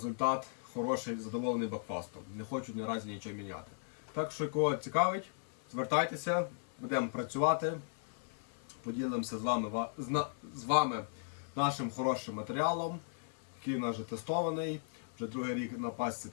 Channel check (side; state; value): right; silent; 53 dB below the other